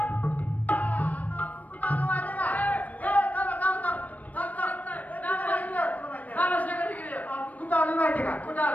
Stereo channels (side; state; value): right; late; 0.073 ms